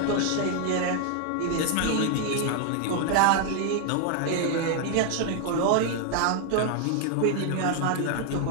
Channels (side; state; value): both; different; correlation 0.00